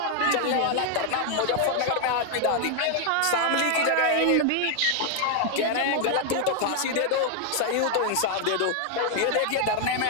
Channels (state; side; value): different; both; correlation 0.00